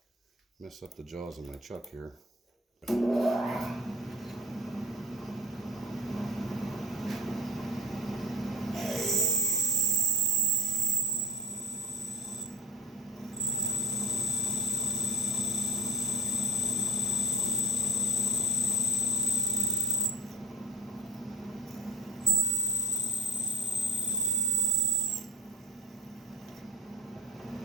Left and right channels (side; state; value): both; normal; correlation 0.35